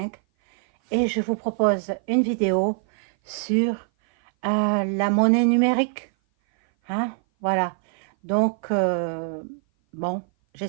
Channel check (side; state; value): left; silent; 58 dB below the other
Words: et je vous propose une vidéo sur la monnaie numérique. Hein? Voilà, donc bon,